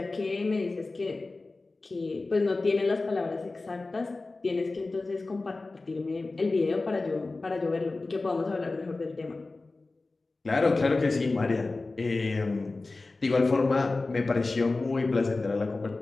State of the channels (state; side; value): quieter; right; 3.4 dB